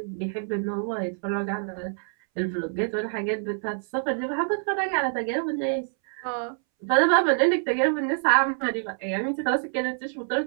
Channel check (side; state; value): left; silent; 61 dB below the other